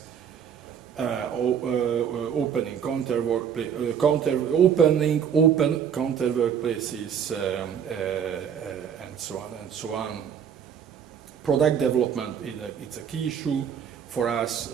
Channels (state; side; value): quieter; left; 8.0 dB